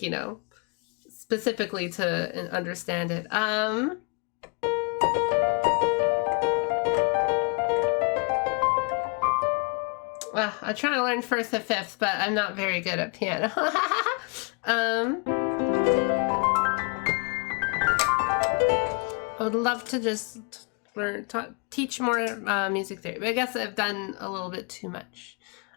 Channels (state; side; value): quieter; right; 34.8 dB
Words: you know, specifically to understand it. Well, I try to learn first and fifth, but I'm not very good at piano. I would love to just teach more music theory, but I guess I've done a little bit too much.